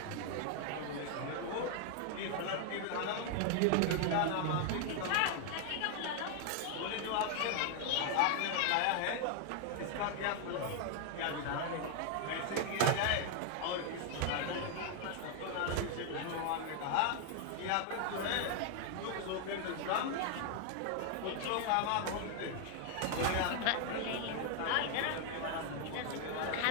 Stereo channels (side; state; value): both; different; correlation 0.00